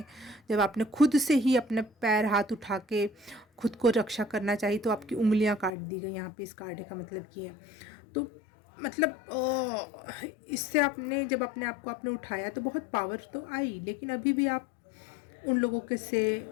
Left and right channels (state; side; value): drops out; right; at 5.7 s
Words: जब आपने खुद से ही अपने पैर हाथ उठा के खुद को रक्षा करना चाहिए, तो आपकी उंगलियां काट दी गई। यहाँ पे इस कार्ड का मतलब ये है। तो मतलब इससे आपने जब अपने आप को आपने उठाया तो बहुत पावर तो आई, लेकिन अभी भी आप उन लोगों के से